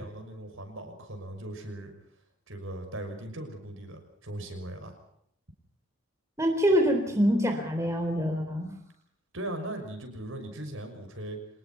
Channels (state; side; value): normal; both; correlation 0.64